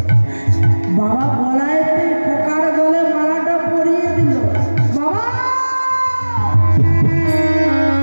বাবা গলায় পোকার গলে মালাটা পরিয়ে দিল। বাবা,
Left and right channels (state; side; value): inverted; both; correlation -1.00